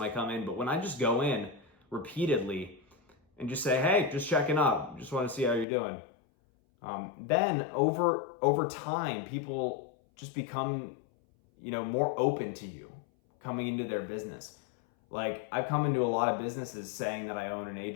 I come in, but when I just go in repeatedly and just say, hey, just checking up, just want to see how you're doing. Then over time, people just become, more open to you coming into their business. Like, I've come into a lot of businesses saying that I own an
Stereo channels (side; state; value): right; drops out; at 5.7 s